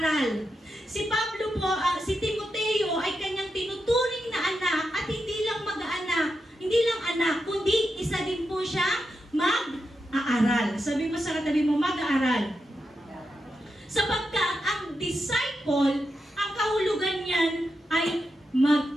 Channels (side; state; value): both; normal; correlation 0.87